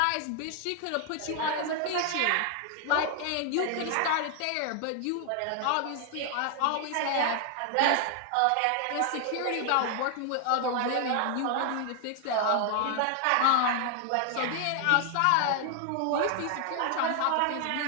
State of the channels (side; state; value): both; different; correlation 0.00